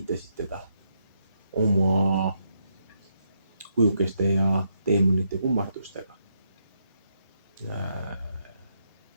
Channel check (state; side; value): inverted; both; correlation -0.78